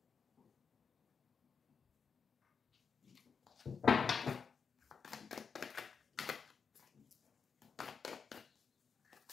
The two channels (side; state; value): right; quieter; 5.9 dB